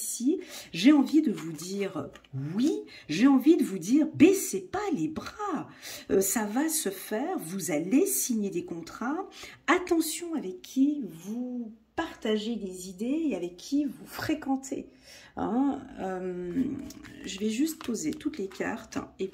j'ai envie de vous dire oui, j'ai envie de vous dire baissez pas les bras. Ça va se faire, vous allez signer des contrats. Attention avec qui vous partagez des idées et avec qui vous fréquentez. Hein, je vais juste poser toutes les cartes et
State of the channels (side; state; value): both; identical; correlation 1.00